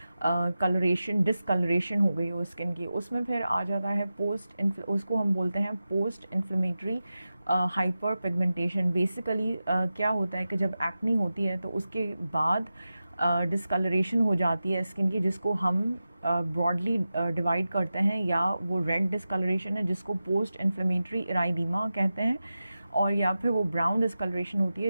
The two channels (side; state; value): both; inverted; correlation -0.93